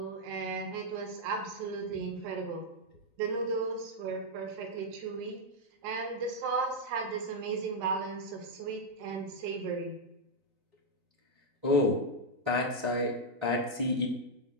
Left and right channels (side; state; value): left; late; 3.6 ms